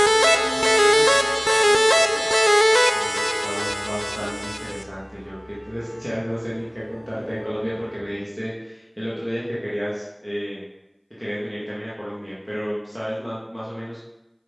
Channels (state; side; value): identical; both; correlation 1.00